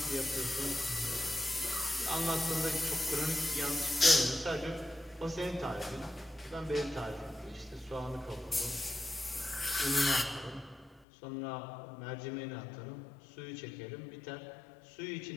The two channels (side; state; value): right; drops out; at 11.1 s